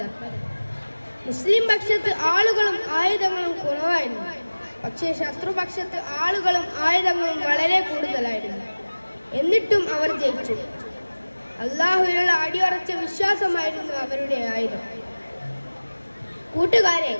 മുസ്ലിം പക്ഷത്ത് ആളുകളും ആയുധങ്ങളും കുറവായിരുന്നു, പക്ഷേ ശത്രുപക്ഷത്ത് ആളുകളും ആയുധങ്ങളും വളരെ കൂടുതലായിരുന്നു. എന്നിട്ടും അവർ ജയിച്ചു. അള്ളാഹുവിനുള്ള അടിയുറച്ച വിശ്വാസമായിരുന്നു അവരുടെ ആയുധം. കൂട്ടുകാരെ,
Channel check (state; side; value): inverted; both; correlation -1.00